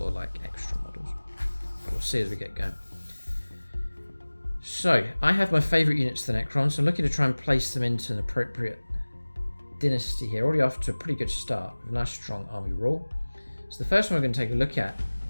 like extra models. But we'll see as we get going. So I have my favourite units to the Necrons, so I'm looking to try and place them into an appropriate dynasty here. Already off to a pretty good start with a nice strong army rule. So the first one we're going to take a look at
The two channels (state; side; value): inverted; both; correlation -1.00